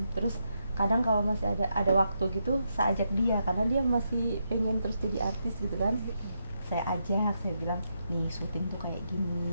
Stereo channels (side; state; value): both; inverted; correlation -0.82